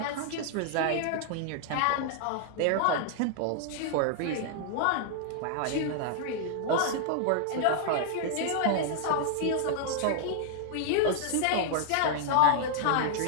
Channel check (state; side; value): different; both; correlation 0.00